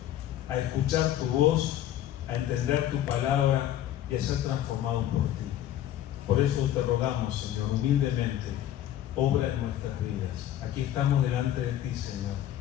a escuchar tu voz, a entender tu palabra y a ser transformados por ti. Por eso te rogamos, Señor, humildemente, obra en nuestras vidas. Aquí estamos delante de ti, Señor,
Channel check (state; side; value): quieter; right; 12.0 dB